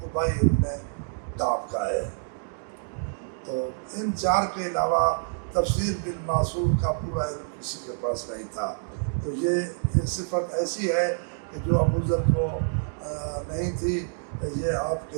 ابن کعب کا ہے۔ تو ان چار کے علاوہ تفسیر بالمعصور کا پورا علم کسی کے پاس نہیں تھا۔ تو یہ صفت ایسی ہے کہ جو ابو ذر کو نہیں تھی، یہ آپ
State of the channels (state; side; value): silent; left; digital silence